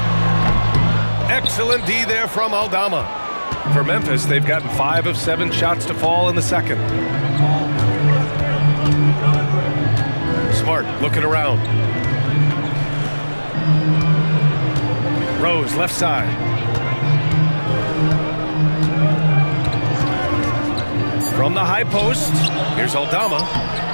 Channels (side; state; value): both; inverted; correlation -1.00